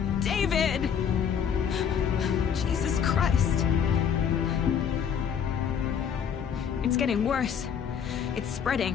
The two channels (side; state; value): right; quieter; 7.8 dB